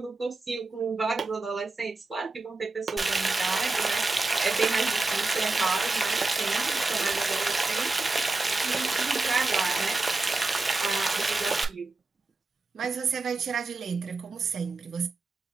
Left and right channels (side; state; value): left; quieter; 3.4 dB